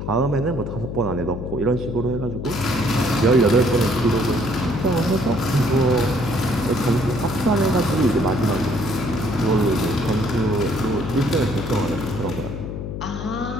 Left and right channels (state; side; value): noise; left; hum, 6 dB below the sound